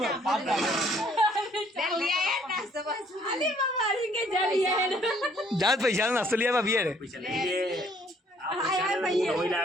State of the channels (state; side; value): normal; both; correlation 0.63